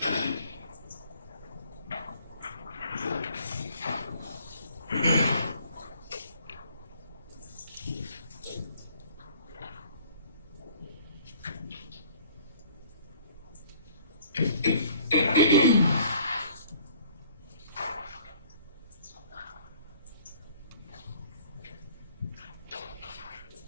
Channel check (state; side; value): inverted; both; correlation -0.57